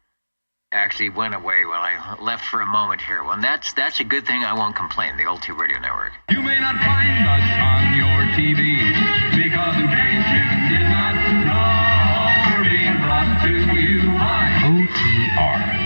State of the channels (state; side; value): inverted; both; correlation -1.00